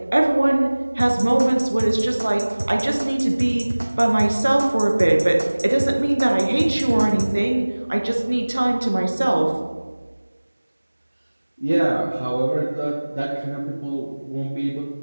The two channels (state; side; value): inverted; both; correlation -1.00